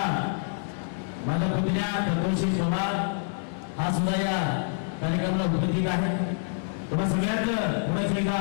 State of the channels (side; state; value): right; silent; 59 dB below the other